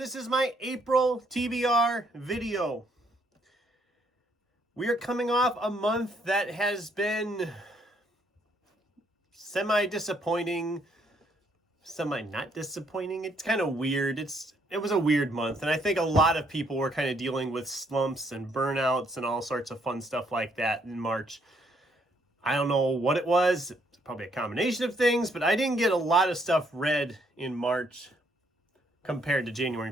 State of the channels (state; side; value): normal; both; correlation 0.70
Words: is my April TBR video. We are coming off a month that has been semi-disappointing, semi-not disappointing. It's kind of weird. It was a weird month, and I think a lot of people were kind of dealing with slumps and burnouts and all sorts of fun stuff like that in March. I don't know what it was. It's probably a combination of things, but I didn't get a lot of stuff read in March compared to January